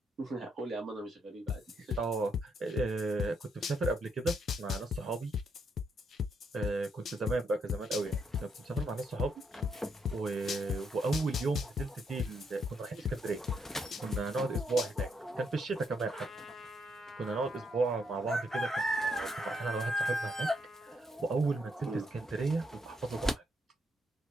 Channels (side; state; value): both; normal; correlation 0.76